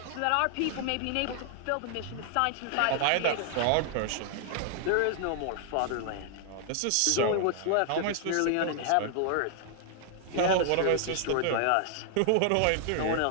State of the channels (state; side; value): different; both; correlation 0.00